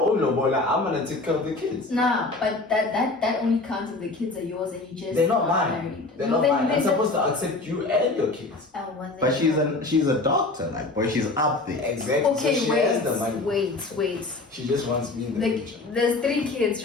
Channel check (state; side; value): quieter; right; 3.2 dB